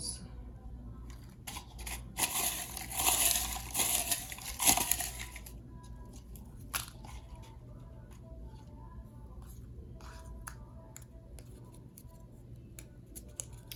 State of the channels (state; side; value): identical; both; correlation 1.00